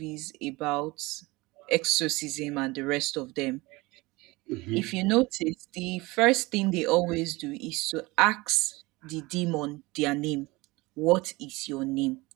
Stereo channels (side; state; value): left; quieter; 22.4 dB